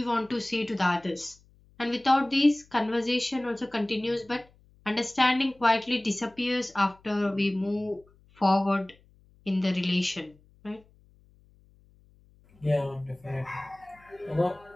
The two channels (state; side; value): noise; left; hum, 30 dB below the sound